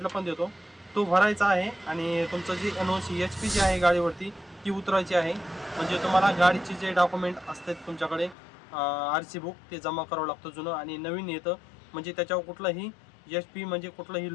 पण देतो, तो भरायचा आहे. आणि तुमचं जी NOC HP जी आहे गाडीवरती ती उतरायची आहे. म्हणजे तुम्हाला गाडीचे जे डॉक्युमेंट असतात तुमच्याकडे RC बुक ते जमा करावं लागतं जुनं, आणि नवीन येतं. म्हणजे त्याच्यावर कुठलाही HP म्हणजे कुठलंही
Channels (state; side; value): drops out; right; at 8.3 s